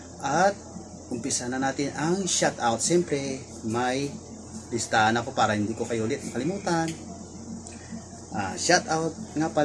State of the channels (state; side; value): identical; both; correlation 1.00